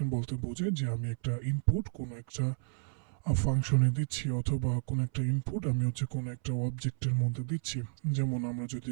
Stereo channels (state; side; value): silent; left; 56 dB below the other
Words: বলতে বোঝায় যে আমি একটা ইনপুট কোনো একটা ফাংশনে দিচ্ছি, অথবা কোনো একটা ইনপুট আমি কোনো একটা অবজেক্টের মধ্যে দিচ্ছি। যেমন আমরা যদি